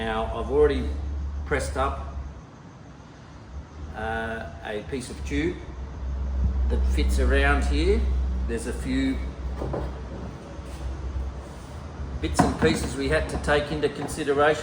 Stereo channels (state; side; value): identical; both; correlation 1.00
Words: I've already pressed up a piece of tube that fits around here. There's a few bits and pieces we had to take into